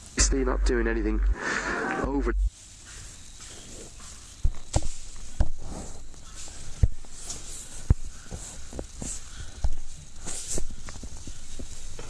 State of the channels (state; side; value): identical; both; correlation 1.00